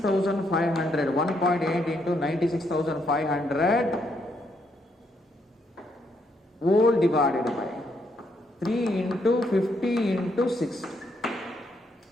1.8 into 96,500 whole divided by 3 into 50 into 60.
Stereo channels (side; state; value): both; normal; correlation 0.75